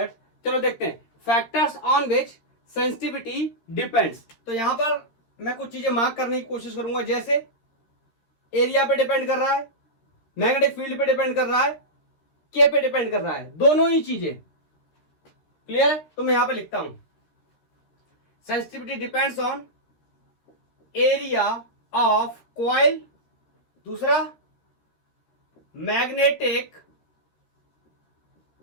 चलो देखते हैं, factors on which sensitivity depends. तो यहां पर मैं कुछ चीजें मार्क करने की कोशिश करूंगा, जैसे एरिया पे डिपेंड कर रहा है, मैग्नेटिक फील्ड पे डिपेंड कर रहा है, के पे डिपेंड कर रहा है, दोनों ही चीजें। क्लियर है? तो मैं यहां पे लिखता हूं sensitivity depends on area of coil, दूसरा मैग्नेटिक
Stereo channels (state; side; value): late; right; 13 ms